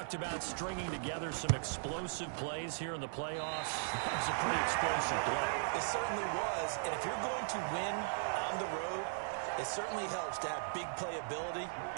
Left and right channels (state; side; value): silent; left; digital silence